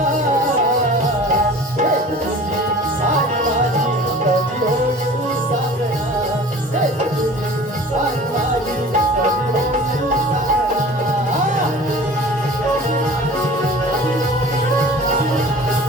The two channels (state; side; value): normal; both; correlation 0.42